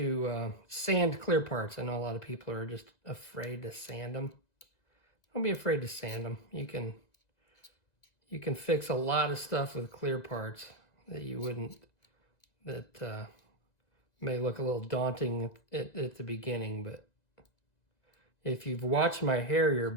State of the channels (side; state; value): right; late; 1.9 ms